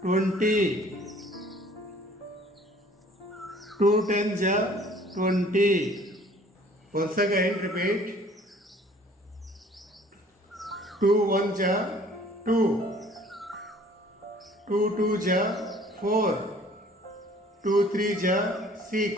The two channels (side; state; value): both; normal; correlation 0.54